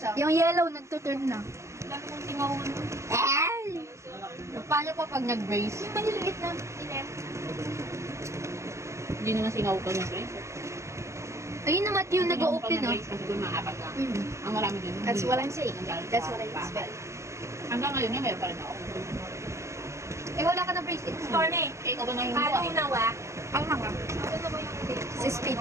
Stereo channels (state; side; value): late; left; 0.14 ms